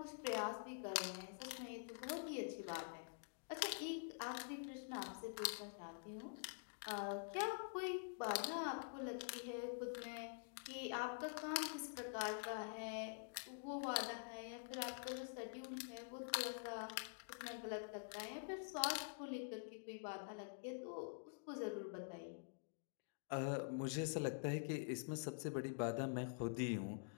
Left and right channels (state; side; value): silent; right; digital silence